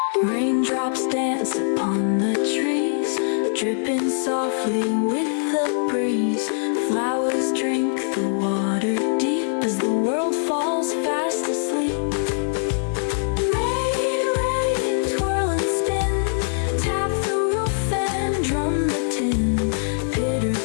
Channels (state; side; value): silent; right; digital silence